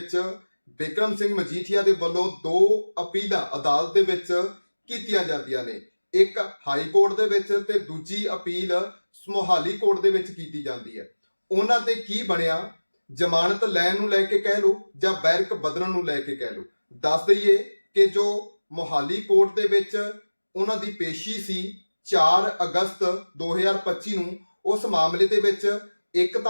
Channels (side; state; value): both; inverted; correlation -1.00